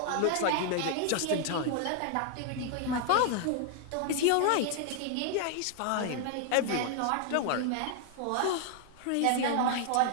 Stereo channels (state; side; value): different; both; correlation 0.00